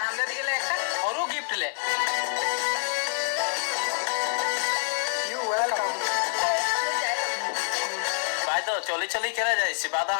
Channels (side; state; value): right; silent; 60 dB below the other